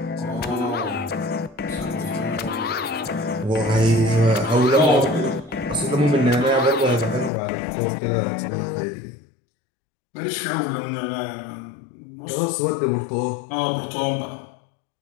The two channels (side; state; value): right; drops out; at 7.3 s